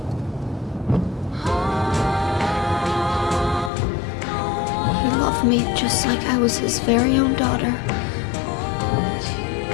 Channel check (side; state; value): right; drops out; at 3.7 s